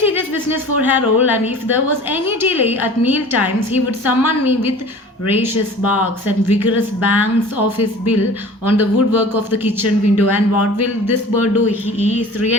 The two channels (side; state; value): both; normal; correlation 0.43